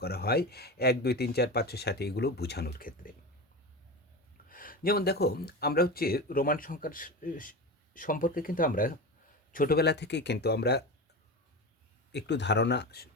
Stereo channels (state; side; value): normal; both; correlation 0.25